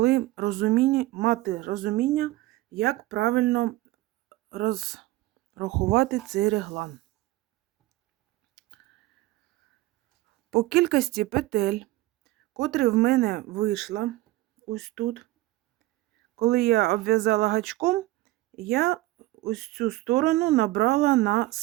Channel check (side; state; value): left; quieter; 17.8 dB